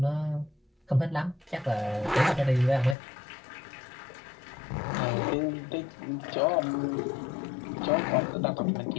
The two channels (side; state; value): right; drops out; at 3.0 s